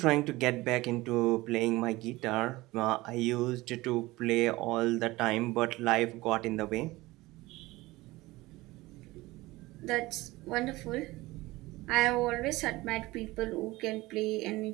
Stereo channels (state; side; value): quieter; left; 19.8 dB